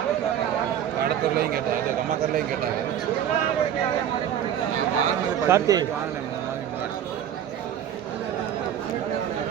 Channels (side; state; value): left; quieter; 9.9 dB